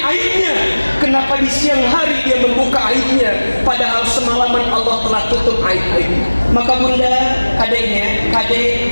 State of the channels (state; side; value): inverted; both; correlation -1.00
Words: Kenapa di siang hari dia membuka aibnya padahal semalaman Allah telah tutup aib-aibnya? Maka bunda, kadeknya,